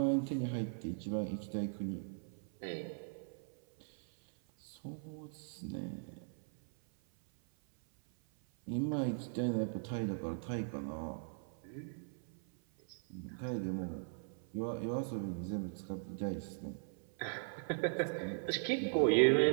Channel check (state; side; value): silent; left; 52 dB below the other